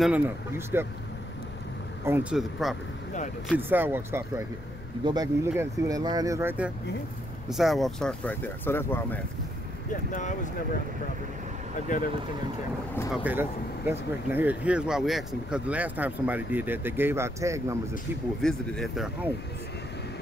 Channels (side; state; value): left; noise; rumble, 12 dB below the sound